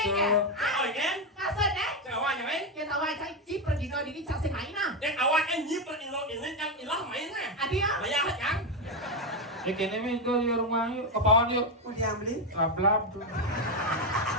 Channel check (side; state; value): both; normal; correlation 0.08